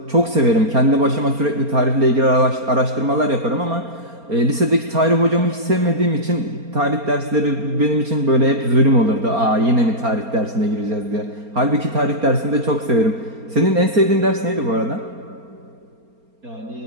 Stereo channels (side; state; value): left; late; 4.3 ms